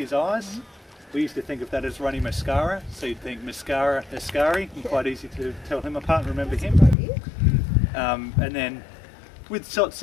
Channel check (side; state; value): right; drops out; at 7.0 s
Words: eyes. We used to think of that as runny mascara, so you'd think mascara, Ascari, and quite easy to tell him apart and remember him. And then with